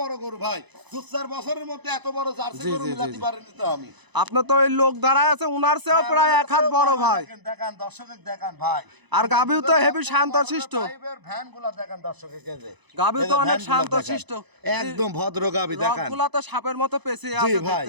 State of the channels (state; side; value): late; left; 1.0 ms